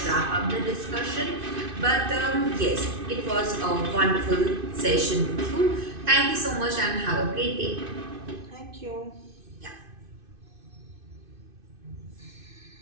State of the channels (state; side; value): late; left; 2.5 ms